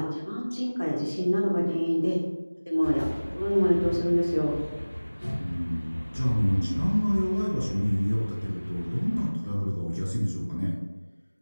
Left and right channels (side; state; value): both; inverted; correlation -1.00